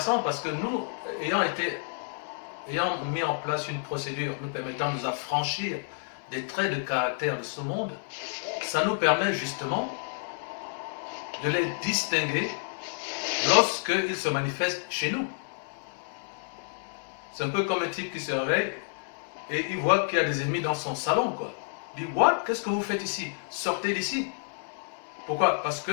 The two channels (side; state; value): right; silent; digital silence